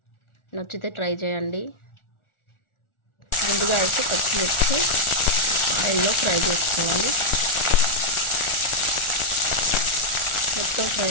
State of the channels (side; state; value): right; late; 1.4 ms